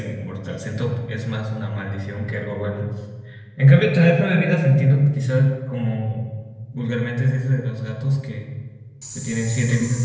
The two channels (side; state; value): both; identical; correlation 1.00